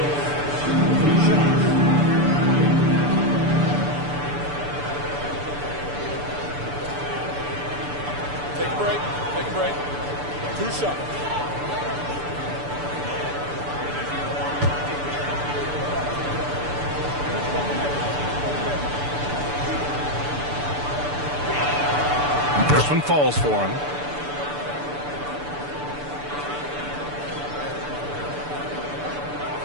Take a break. Take a break. 2 shots. This one falls for him.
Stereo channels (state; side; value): late; left; 6.9 ms